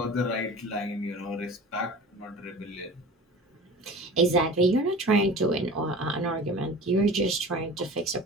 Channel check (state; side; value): normal; both; correlation 0.38